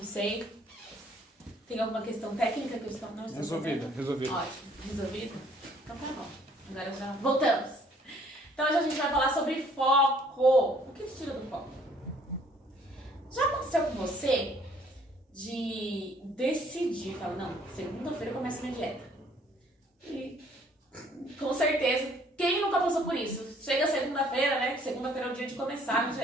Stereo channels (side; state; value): both; normal; correlation 0.61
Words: Tem alguma questão técnica que eu estou... Não estou Resolvida. Ótimo, resolvido? Então tá bom. Agora já voltamos. Então hoje a gente vai falar sobre foco. O que te tira do foco? Já aconteceu com você de decidir, falar, não, segunda-feira eu começo minha dieta. E com certeza, quem nunca passou por isso? Chega segunda-feira, né? Segunda-feira é o dia de começar a